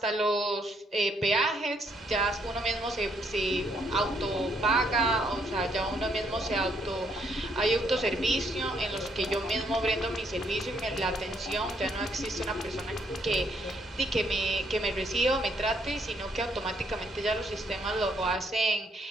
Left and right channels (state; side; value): normal; both; correlation 0.71